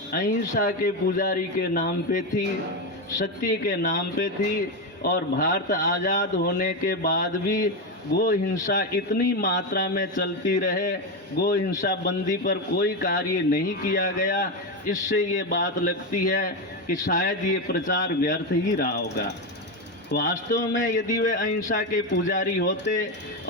अहिंसा के पुजारी के नाम पे थी, सत्य के नाम पे थी, और भारत आज़ाद होने के बाद भी गो हिंसा इतनी मात्रा में चलती रहे, गो हिंसा बंदी पर कोई कार्य नहीं किया गया। इससे ये बात लगती है कि शायद ये प्रचार व्यर्थ ही रहा होगा। वास्तव में यदि वे अहिंसा के पुजारी होते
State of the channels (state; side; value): normal; both; correlation 0.11